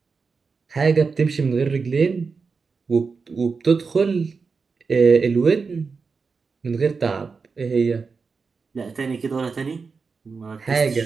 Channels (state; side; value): quieter; left; 4.9 dB